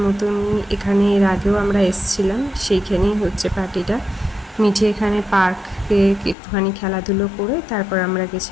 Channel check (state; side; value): drops out; right; at 6.4 s